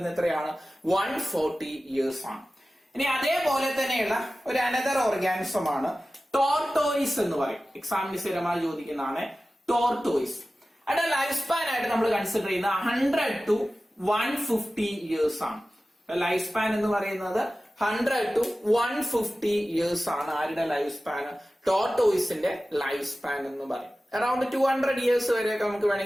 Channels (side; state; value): both; normal; correlation 0.95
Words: എത്രയാണ്? 140 ഇയേഴ്സ് ആണ്. ഇനി അതേപോലെ തന്നെയുള്ള ഒരു അനദർ ഓർഗാനിസം ആണ് ടോർട്ടോയിസ് എന്ന് പറയും. എക്സാമിന് സ്ഥിരമായി ചോദിക്കുന്നതാണ് ടോർട്ടോയിസ്. അതിന്റെ ലൈഫ് സ്പാൻ ആയിട്ട് നമ്മൾ കൺസിഡർ ചെയ്യുന്ന 100 to 150 ഇയേഴ്സ് ആണ്. ലൈഫ് സ്പാൻ എന്ന് പറയുന്നത് 100 to 150 ഇയേഴ്സ് ആണ്. ആരുടെ ലൈഫ് സ്പാൻ? ടോർട്ടോയിസിന്റെ ലൈഫ് സ്പാൻ എന്ന് പറയും. അറൌണ്ട് 200 ഇയേഴ്സ് വരെയൊക്കെ നമുക്ക്